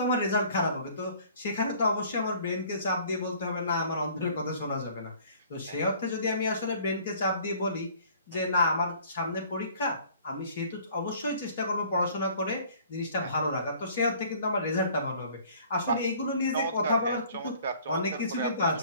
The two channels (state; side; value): inverted; both; correlation -0.54